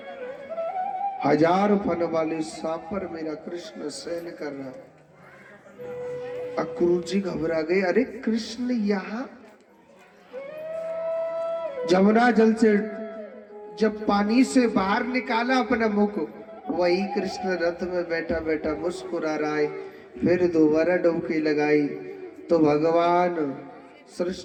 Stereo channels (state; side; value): identical; both; correlation 1.00